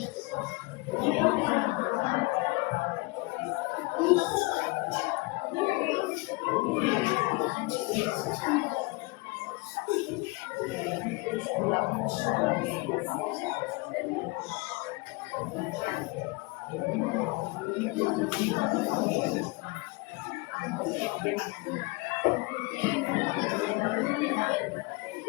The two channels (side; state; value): right; quieter; 25.8 dB